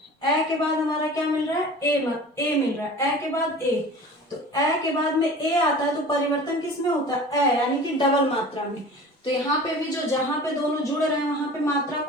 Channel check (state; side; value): normal; both; correlation 0.40